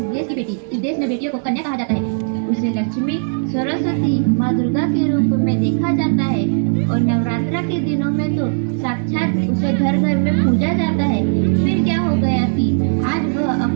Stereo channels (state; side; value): silent; left; digital silence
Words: देश की बेटी। इस देश में बेटियों को कन्या कहा जाता है। उसे लक्ष्मी, सरस्वती, माँ दुर्गा के रूप में देखा जाता है और नवरात्रा के दिनों में तो साक्षात उसे घर घर में पूजा जाता है। फिर क्या हो गया कि आज वह